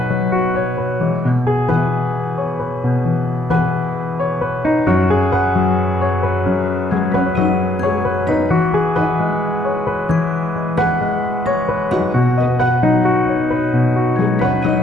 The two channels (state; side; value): normal; both; correlation 0.70